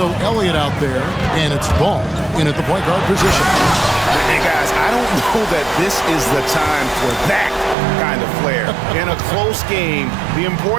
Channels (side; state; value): left; drops out; at 7.8 s